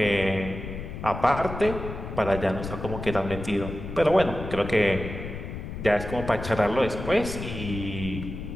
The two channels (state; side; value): noise; left; rumble, 8 dB below the sound